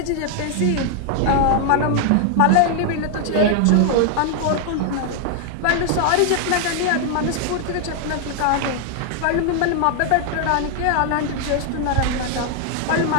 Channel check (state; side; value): different; both; correlation 0.00